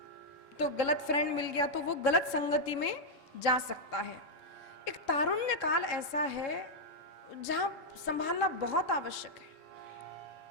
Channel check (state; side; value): late; right; 3.4 ms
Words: तो गलत फ्रेंड मिल गया, तो वो गलत संगति में जा सकता है। एक तारुण्य काल ऐसा है जहां संभालना बहुत आवश्यक है।